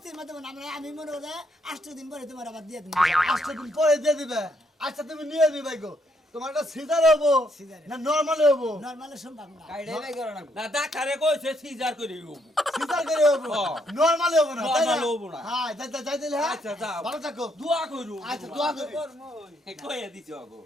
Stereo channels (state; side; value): normal; both; correlation 0.73